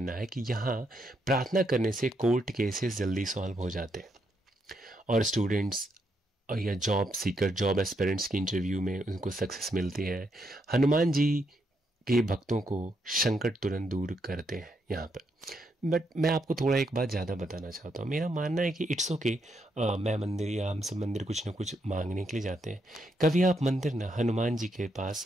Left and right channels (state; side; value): normal; both; correlation 0.78